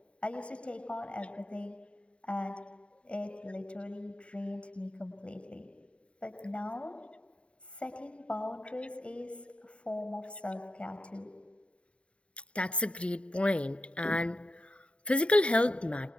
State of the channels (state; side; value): late; right; 0.060 ms